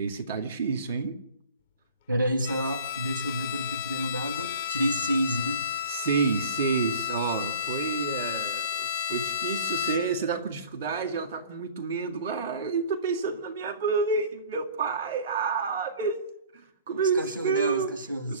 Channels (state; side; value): inverted; both; correlation -0.45